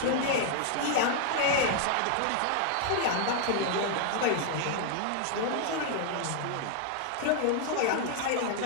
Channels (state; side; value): different; both; correlation 0.00